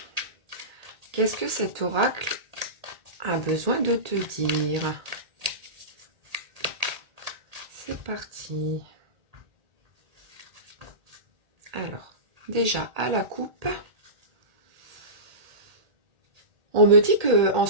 Qu'est-ce que cet oracle a besoin de te dire? C'est parti. Alors, déjà à la coupe, on me dit que en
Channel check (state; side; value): late; left; 1.8 ms